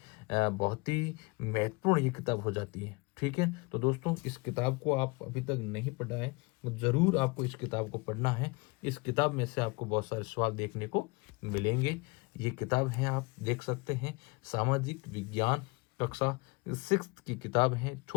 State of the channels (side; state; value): right; quieter; 26.6 dB